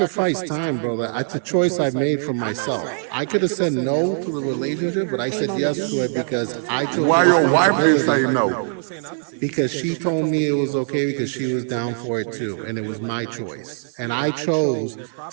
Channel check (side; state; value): left; silent; 62 dB below the other